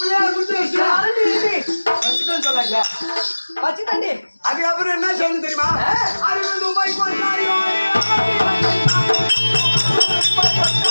குடிச்சு வைக்கா. வச்சுட்டேன்னு சொல்லாங்க. வச்சுட்டேன்டி. அதுக்கப்புறம் என்ன செய்யணும் தெரியுமா? 60 ரூபாய் கொண்டாடியோ.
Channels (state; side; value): inverted; both; correlation -1.00